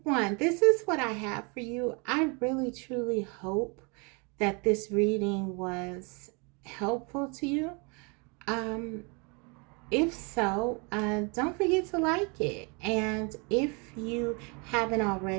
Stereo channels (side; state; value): left; quieter; 32.0 dB